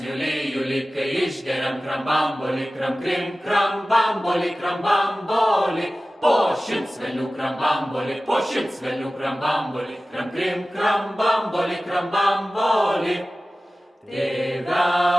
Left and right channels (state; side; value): normal; both; correlation 0.96